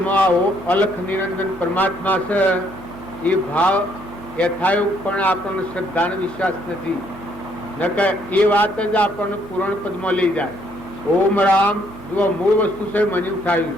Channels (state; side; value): noise; right; hum, 18 dB below the sound